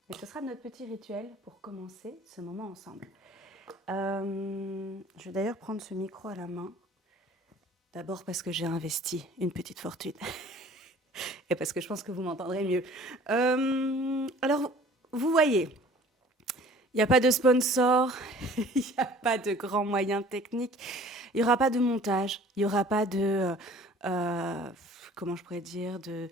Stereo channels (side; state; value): both; normal; correlation 0.50